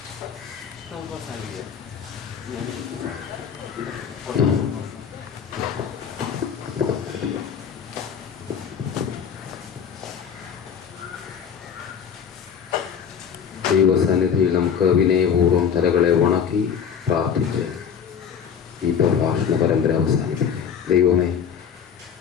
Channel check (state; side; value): quieter; right; 7.5 dB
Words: ദൈവസന്നിധിയിൽ നമുക്ക് വിനയപൂർവ്വം തലകളെ വണക്കി പ്രാർത്ഥിച്ച് ഈ പ്രഭാഷണ പരമ്പര അവസാനിപ്പിക്കുക. ദൈവമേ,